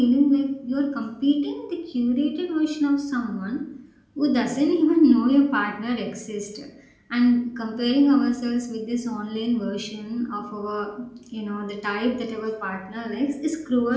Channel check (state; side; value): identical; both; correlation 1.00